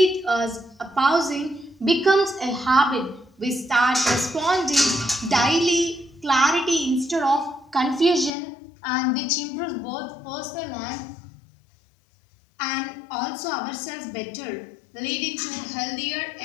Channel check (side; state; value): right; drops out; at 8.3 s